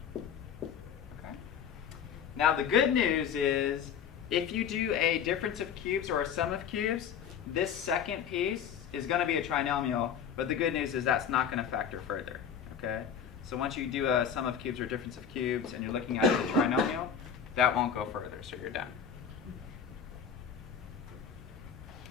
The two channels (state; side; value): quieter; right; 7.7 dB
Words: 4. Okay. Now the good news is, if you do a difference of cubes or a sum of cubes, this second piece is going to be a trinomial, but the good news is that's not going to factor further, okay? So once you do a sum of cubes or difference of cubes and you're looking at the trinomial, that won't go further, so you're done.